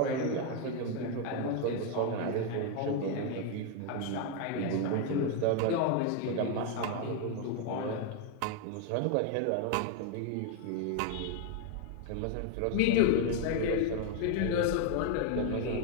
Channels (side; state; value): both; different; correlation 0.01